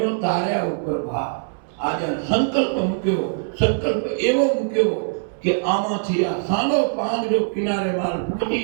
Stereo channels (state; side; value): silent; left; 64 dB below the other